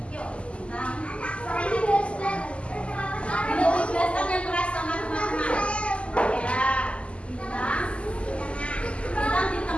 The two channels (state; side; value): late; right; 0.056 ms